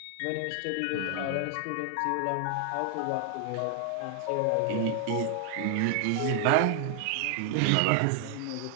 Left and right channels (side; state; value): both; different; correlation 0.00